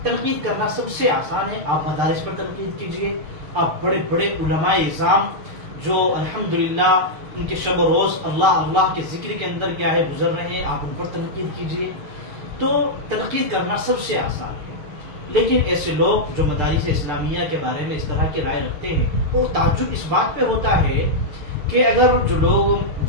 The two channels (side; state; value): left; late; 6.7 ms